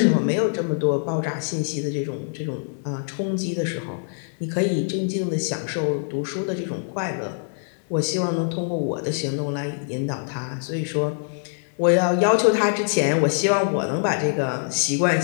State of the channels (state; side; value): silent; right; 63 dB below the other